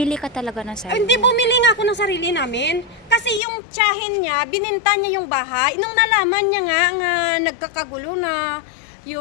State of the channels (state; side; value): drops out; right; at 3.4 s